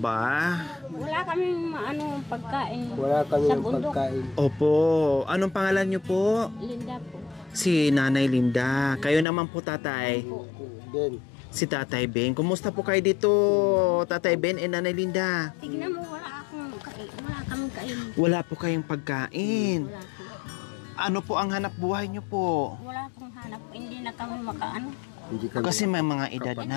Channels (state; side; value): drops out; right; at 9.2 s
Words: Wala kaming pagkain. Wala kaming pagkain. Opo. Anong pangalan niyo po? Linda po. Si Nanay Linda. Kayo naman po, tatay? Ben. Si Tatay Ben. Kumusta po kayo dito, Tatay Ben and Nanay Linda? Tignan mo, wala kaming kain. Wala po kayong pagkain. Wala po. Ano po ang hanap buhay niyo po? Wala pong hanap. Hindi na kami makaano. Kasi may mga edad Hindi